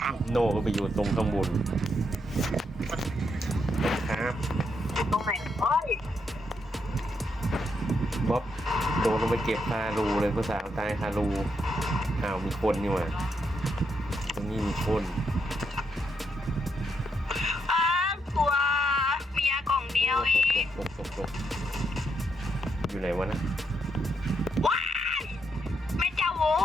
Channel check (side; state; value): both; normal; correlation 0.79